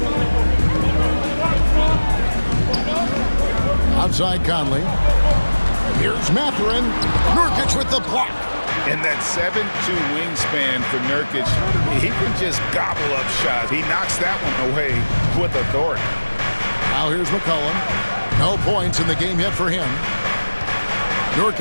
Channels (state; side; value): inverted; both; correlation -1.00